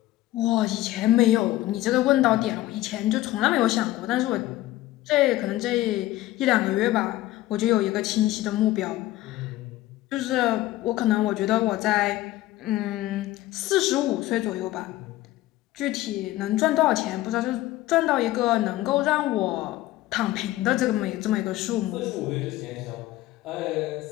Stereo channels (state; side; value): quieter; right; 16.1 dB